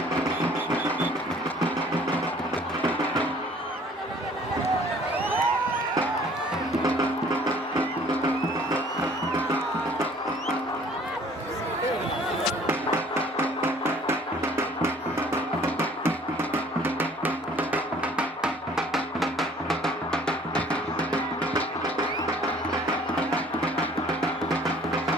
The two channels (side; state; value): both; normal; correlation 0.55